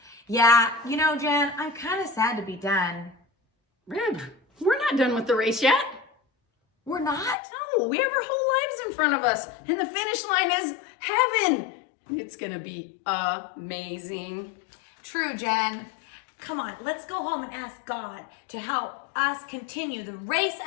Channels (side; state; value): right; drops out; at 7.4 s